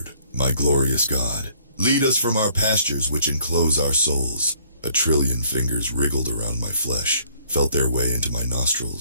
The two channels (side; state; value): both; inverted; correlation -0.62